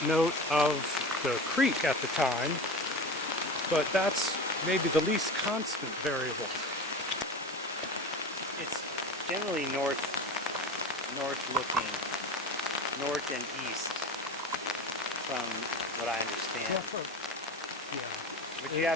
note of the creek at the time, but that's maybe the least constant variable. It's generally north looking, north and east, from what I understand. Yeah. But you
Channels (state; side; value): normal; both; correlation 0.30